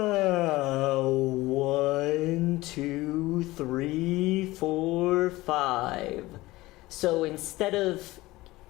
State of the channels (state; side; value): quieter; right; 19.0 dB